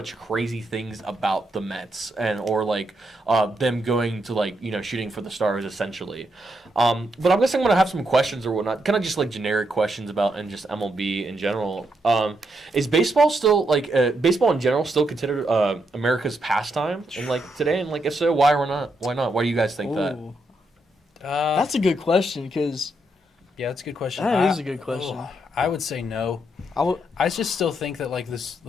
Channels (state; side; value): normal; both; correlation 0.80